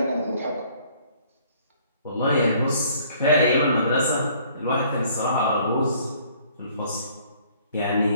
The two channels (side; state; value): both; inverted; correlation -0.59